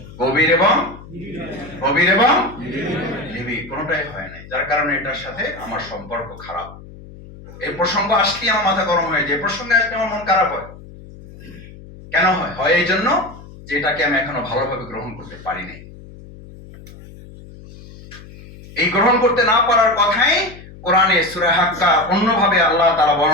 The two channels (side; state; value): left; noise; hum, 18 dB below the sound